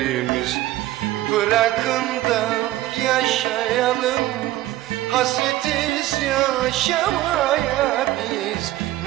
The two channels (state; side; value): quieter; left; 15.7 dB